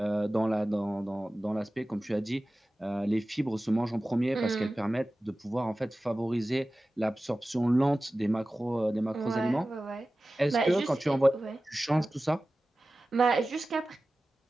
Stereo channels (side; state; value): both; normal; correlation 0.96